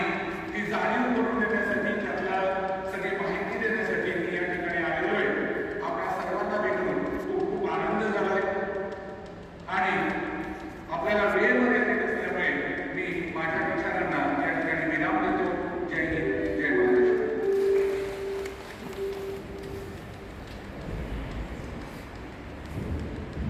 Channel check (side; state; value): both; identical; correlation 1.00